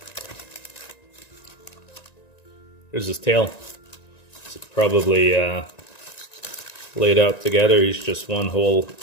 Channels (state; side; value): late; right; 1.9 ms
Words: There's his tail. It's probably laid out together. He's just one whole